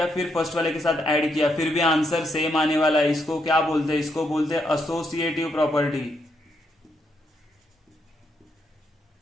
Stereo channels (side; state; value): both; normal; correlation 0.78